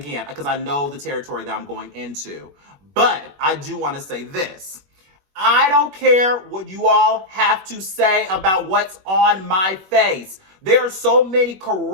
because I know the territory that I'm going into. But I do want to say this. I don't care what you all have to say about what's on my face. There are so many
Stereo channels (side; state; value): left; late; 21 ms